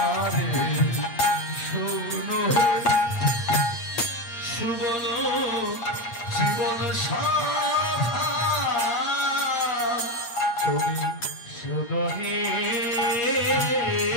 শোনো হে সুবল জীবন শাখা, তুমি শোনো হে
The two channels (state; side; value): late; right; 8.5 ms